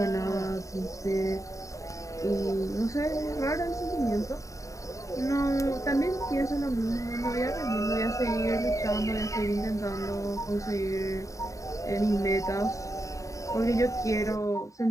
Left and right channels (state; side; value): late; right; 0.16 ms